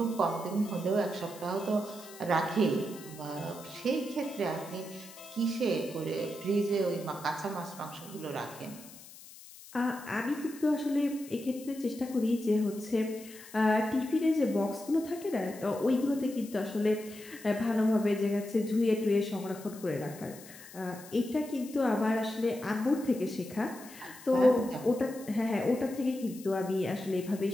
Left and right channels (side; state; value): left; noise; hiss, 18 dB below the sound